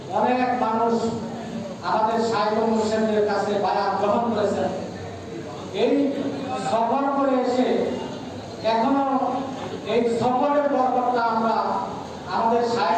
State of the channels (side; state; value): both; identical; correlation 1.00